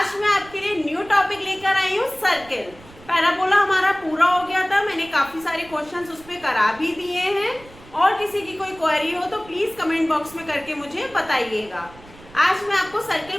मैं आपके लिए न्यू टॉपिक लेकर आई हूँ, सर्किल। पैराबोला हमारा पूरा हो गया था, मैंने काफी सारे क्वेश्चंस उस पर करा भी दिए हैं। और किसी की कोई क्वेरी हो तो प्लीज कमेंट बॉक्स में करके मुझे बताइएगा। आज मैं आपको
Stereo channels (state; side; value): noise; right; rumble, 22 dB below the sound